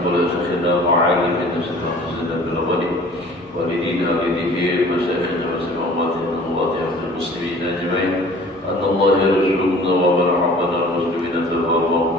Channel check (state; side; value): normal; both; correlation 0.48